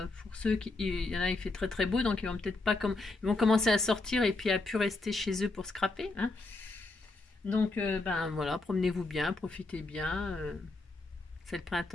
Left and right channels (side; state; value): right; quieter; 3.2 dB